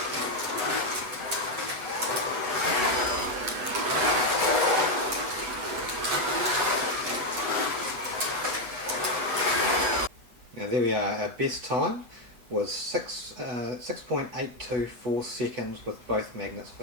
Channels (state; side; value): late; left; 8.0 ms